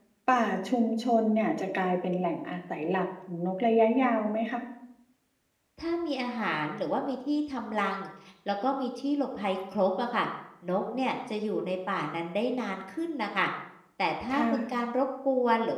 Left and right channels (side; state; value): both; identical; correlation 1.00